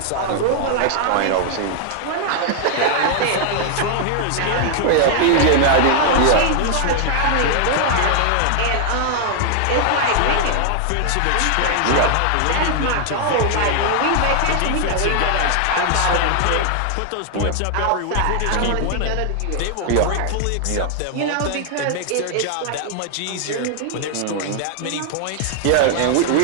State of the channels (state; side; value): different; both; correlation 0.00